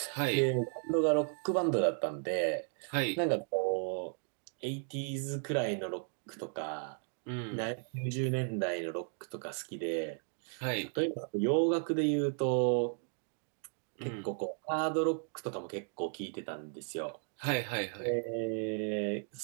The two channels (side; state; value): left; silent; 54 dB below the other